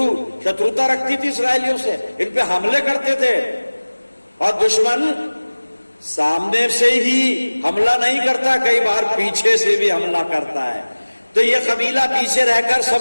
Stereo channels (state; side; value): inverted; both; correlation -1.00